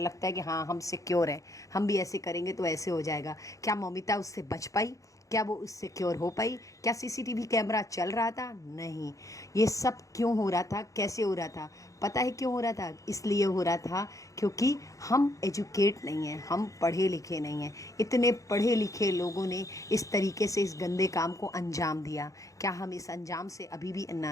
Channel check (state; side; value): late; right; 0.16 ms